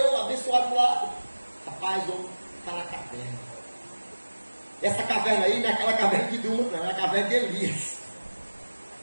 abençoado do lado? Rapaz, o homem está na caverna. Essa caverna aí não é aquela caverna de Duma, não, é a caverna de Elias.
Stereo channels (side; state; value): both; inverted; correlation -1.00